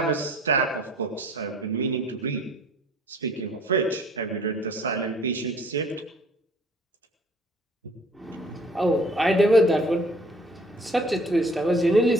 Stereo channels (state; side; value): normal; both; correlation 0.54